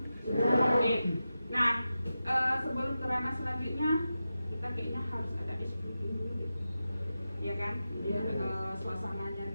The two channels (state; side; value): inverted; both; correlation -0.91